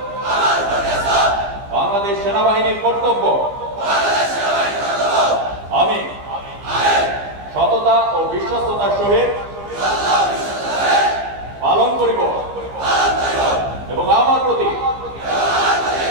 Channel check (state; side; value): late; left; 15 ms